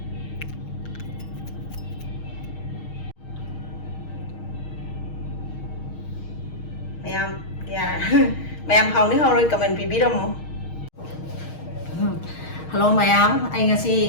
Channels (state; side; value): late; right; 6.4 ms